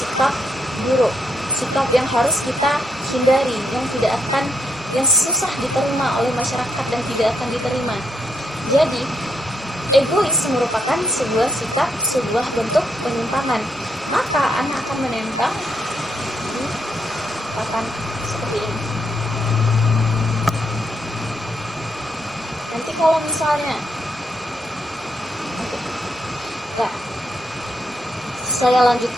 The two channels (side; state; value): both; normal; correlation 0.78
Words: buruk, sikap yang harus kita hindari, yang susah diterima oleh masyarakat dan tidak akan diterima. Jadi egois merupakan sebuah sikap, sebuah bentuk penyimpangan. Maka anak akan menempel di papan seperti ini. Nanti kalau misalnya ya, saya